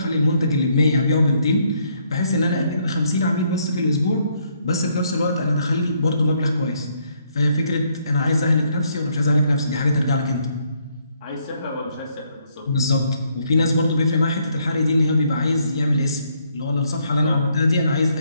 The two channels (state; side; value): inverted; both; correlation -0.71